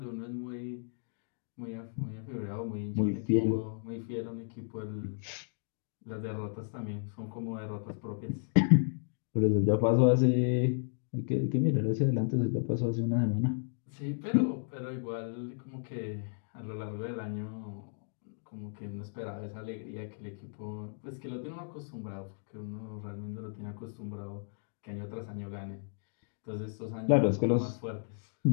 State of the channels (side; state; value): right; silent; digital silence